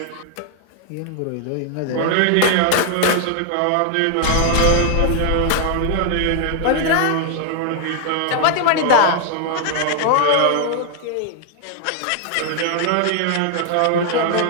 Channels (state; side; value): different; both; correlation 0.00